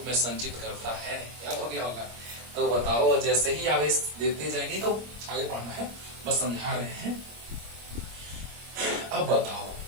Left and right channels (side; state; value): left; late; 25 ms